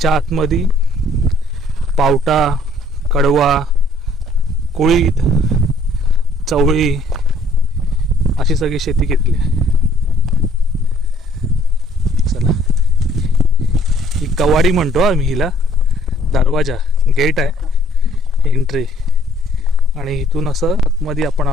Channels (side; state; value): both; normal; correlation 0.60